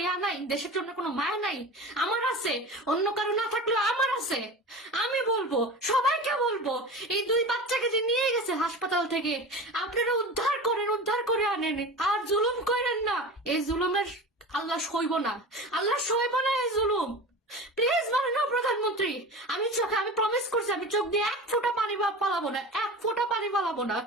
ইয়া নাই, দেশের জন্য কোনো মায়া নাই? আমার আছে, অন্য কারো না থাকলেও আমার আছে। আমি বলবো, সবাইকে বলবো, এই 2 বাচ্চাকে যে নিয়ে গেছে হাসপাতাল থেকে, আপনারা উদ্ধার করেন, উদ্ধার করে আনেন, আর জুলুম করেন না। এই জুলুমের আল্লাহ সইব না, আল্লাহ সইব না এই জুলুম। প্লিজ মাননীয় প্রধানমন্ত্রী, আমি প্রমিস করছি, আমি চোখ দিয়ে 1 ফোঁটা পানি ফালাবো না, 1 ফোঁটা পানি ফালাবো না,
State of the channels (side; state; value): both; normal; correlation 0.32